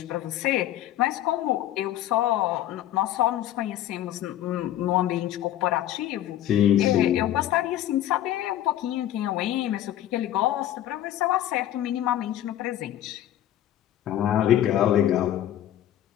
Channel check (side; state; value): right; quieter; 12.6 dB